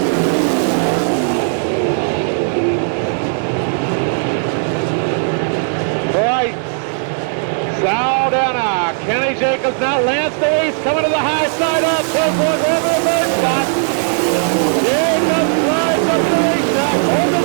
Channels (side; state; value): left; silent; 61 dB below the other